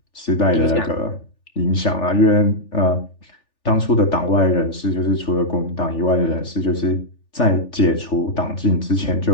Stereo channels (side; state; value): right; late; 3.4 ms